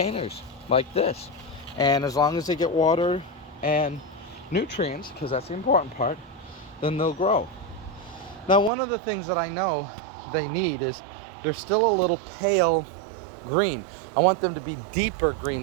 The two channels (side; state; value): left; drops out; at 8.7 s